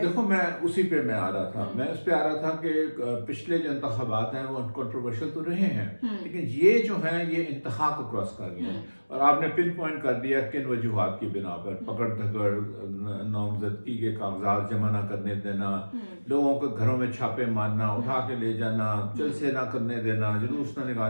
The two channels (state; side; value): inverted; both; correlation -1.00